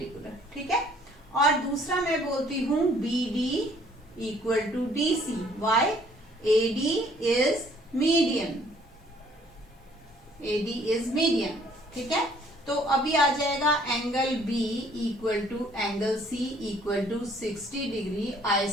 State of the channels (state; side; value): normal; both; correlation 0.60